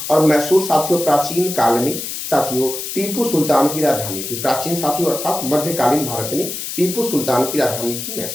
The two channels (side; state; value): left; noise; hiss, 6 dB below the sound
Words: और मैसूर साथियों प्राचीन काल में साथियों टीपू सुल्तान की राजधानी थी। प्राचीन साथियों अर्थात मध्यकालीन भारत में टीपू सुल्तान की राजधानी थी